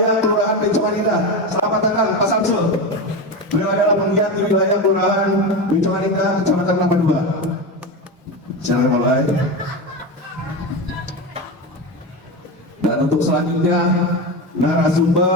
Kelurahan Bencongan Indah. Selamat datang Pak Samsul. Beliau adalah penggiat di wilayah Kelurahan Bencongan Indah, Kecamatan Kelapa II. Silakan Pak Nuai. Dan untuk selanjutnya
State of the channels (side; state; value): both; normal; correlation 0.20